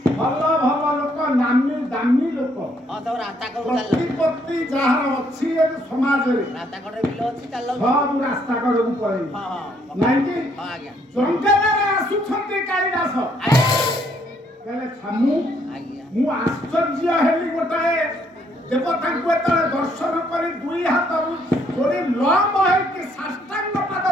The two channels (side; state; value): both; normal; correlation 0.69